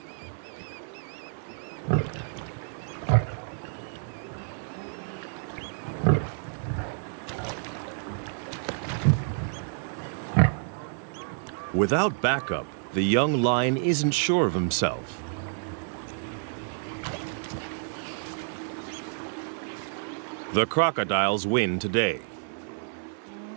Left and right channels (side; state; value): left; silent; 58 dB below the other